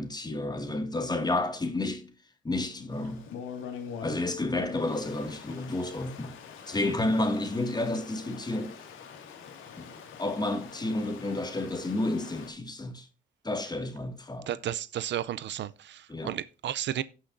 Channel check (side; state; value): both; normal; correlation 0.61